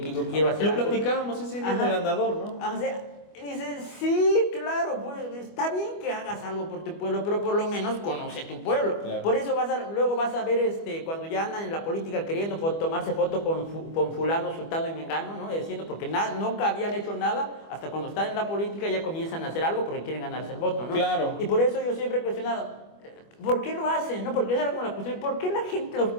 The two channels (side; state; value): right; late; 25 ms